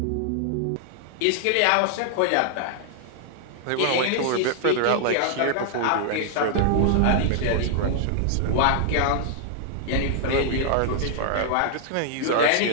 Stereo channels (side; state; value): both; different; correlation -0.01